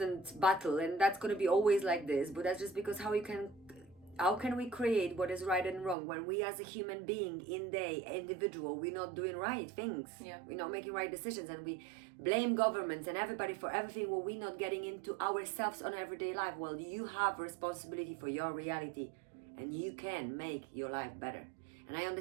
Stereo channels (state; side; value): drops out; left; at 6.0 s